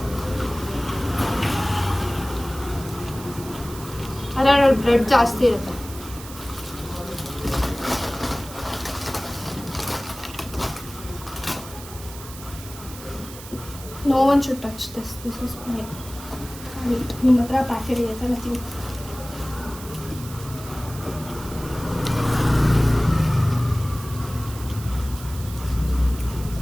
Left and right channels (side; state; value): right; noise; hiss, 15 dB below the sound